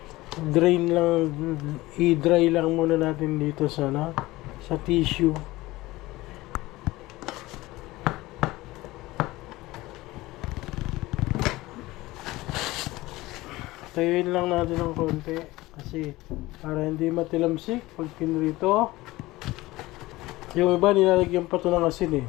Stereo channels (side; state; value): right; quieter; 19.1 dB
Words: I-dry lang muna natin dito sa tissue. Tayuin lang natin ng konti kasi para hindi matilamsik pag pinrito. Yung iba nilalagyan pa ito ng asin eh.